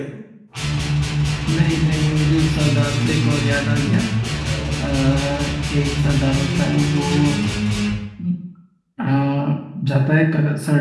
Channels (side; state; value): both; identical; correlation 1.00